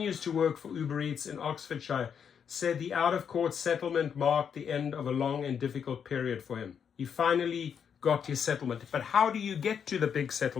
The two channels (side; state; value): right; quieter; 7.5 dB